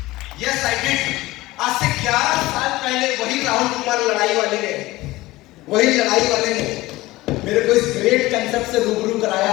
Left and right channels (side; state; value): right; quieter; 18.7 dB